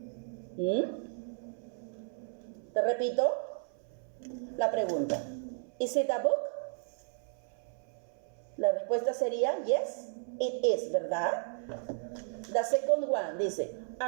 Te repito la pregunta. Is it a book? La respuesta sería yes, it is, ¿verdad? The second one dice,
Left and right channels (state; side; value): silent; left; 55 dB below the other